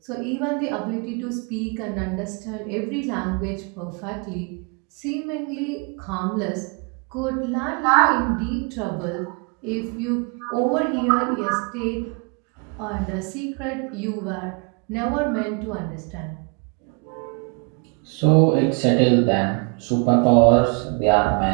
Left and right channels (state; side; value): quieter; left; 35.1 dB